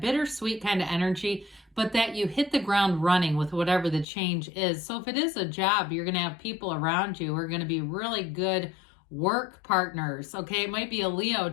kind of energy, but that you hit the ground running with whatever the change is. So if it is a job, you're going to have people around you who are going to be really good work partners, okay? It might be a Leo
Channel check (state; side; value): drops out; right; at 4.0 s